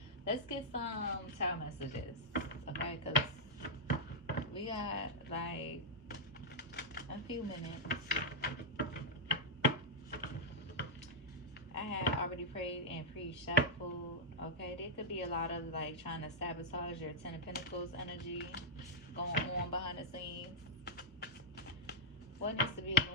Let's get some child messages. Okay, because we got like a few minutes. I had already prayed and pre-shuffled. Okay, there could be a lot of like trying to sabotage your Ten of Pentacles energy going on behind the scenes. What needs to be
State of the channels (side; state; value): both; normal; correlation -0.07